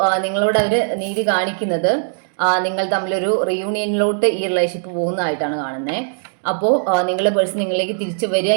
നിങ്ങളോട് അവർ നീതി കാണിക്കുന്നത് നിങ്ങൾ തമ്മിലൊരു റീയൂണിയനിലോട്ട് ഈ റിലേഷൻഷിപ്പ് പോകുന്നതായിട്ടാണ് കാണുന്നത്. അപ്പോൾ നിങ്ങളുടെ പേഴ്സൺ നിങ്ങളിലേക്ക് തിരിച്ചു വരിക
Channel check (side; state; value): left; silent; digital silence